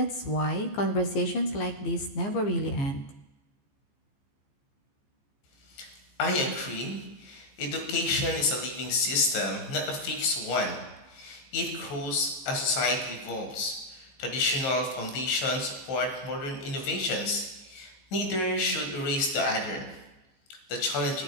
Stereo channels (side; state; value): right; late; 15 ms